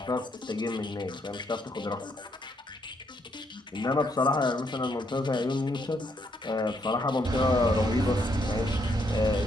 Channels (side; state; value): both; normal; correlation 0.74